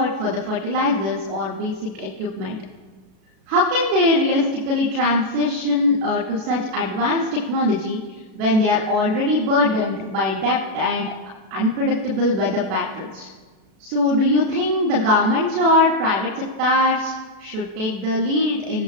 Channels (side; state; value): left; late; 37 ms